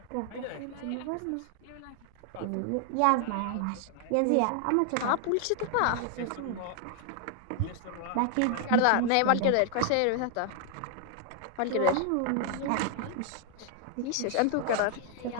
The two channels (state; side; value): different; both; correlation 0.00